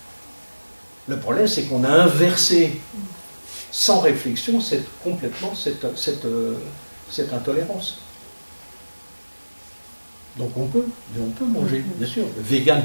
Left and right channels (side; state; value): both; inverted; correlation -1.00